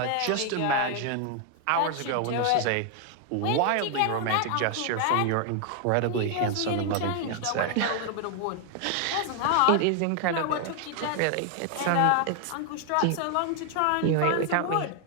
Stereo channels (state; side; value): different; both; correlation 0.00